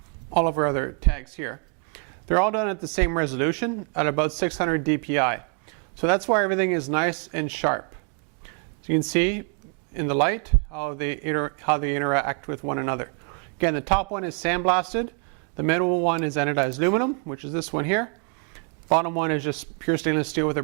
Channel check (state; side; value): quieter; left; 37.1 dB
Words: all of our other tags here. They're all done at the same resolution at about 600 dpi. So that's why everything is nice and sharp. So you can see in the light how they interact with one another. Again, the top one is sandblasted. The middle one is anodized aluminum, which is this one here. Bottom one is just pure stainless steel with a